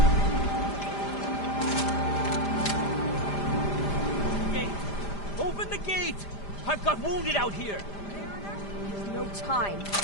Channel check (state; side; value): late; right; 5.0 ms